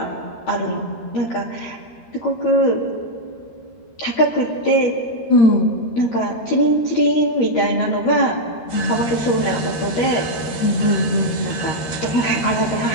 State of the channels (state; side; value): late; right; 13 ms